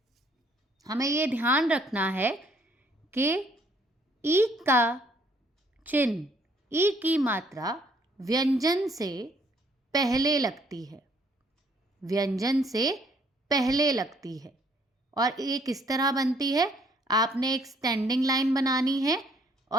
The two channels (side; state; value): both; normal; correlation 0.64